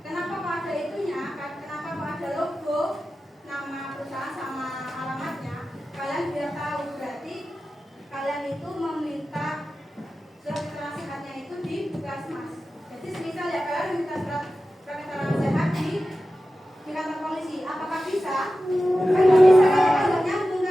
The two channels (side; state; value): both; normal; correlation 0.94